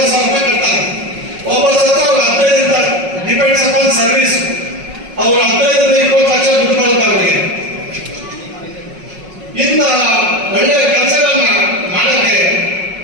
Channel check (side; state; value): left; late; 5.4 ms